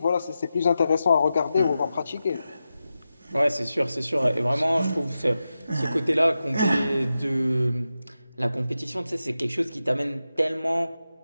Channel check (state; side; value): inverted; both; correlation -0.91